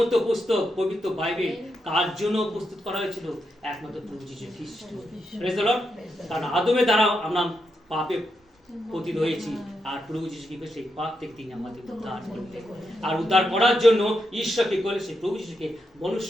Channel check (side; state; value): both; normal; correlation 0.84